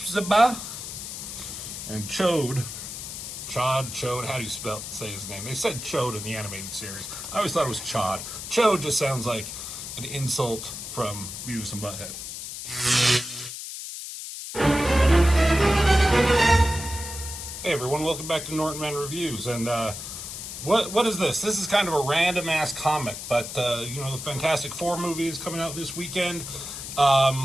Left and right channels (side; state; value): left; noise; hiss, 8 dB below the sound